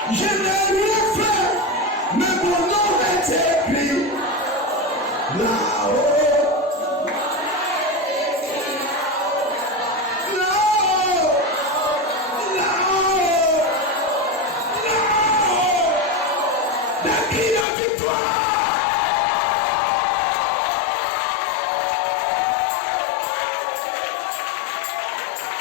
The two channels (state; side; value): drops out; right; at 17.7 s